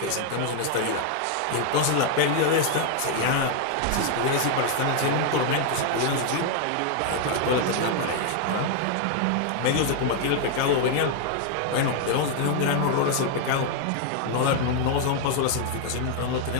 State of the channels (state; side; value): different; both; correlation 0.00